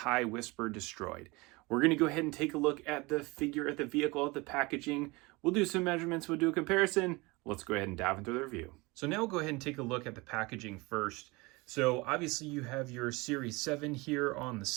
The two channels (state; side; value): quieter; left; 24.5 dB